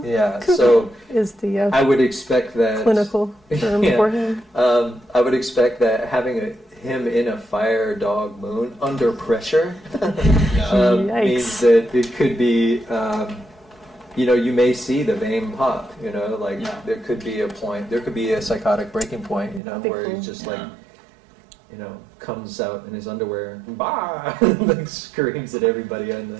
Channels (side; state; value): left; drops out; at 19.6 s